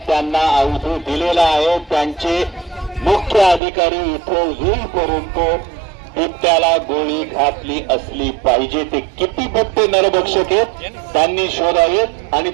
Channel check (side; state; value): left; drops out; at 3.6 s